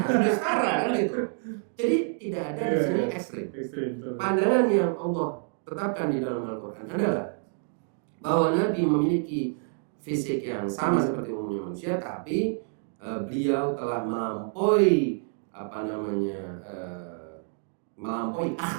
setara kan gitu. Jadi tidak ada di sini ekstrim. Pandangan yang Allah tetapkan di dalam Al-Quran adalah bahwa Nabi memiliki fisik yang sama seperti umumnya manusia, tapi beliau telah melampaui melampaui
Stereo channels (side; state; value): left; silent; 59 dB below the other